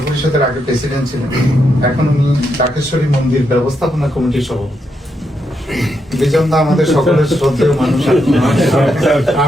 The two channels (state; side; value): normal; both; correlation 0.81